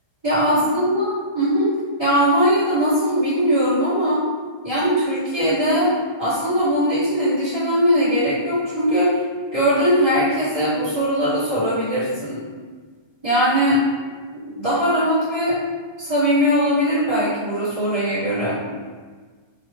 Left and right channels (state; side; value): late; left; 1.3 ms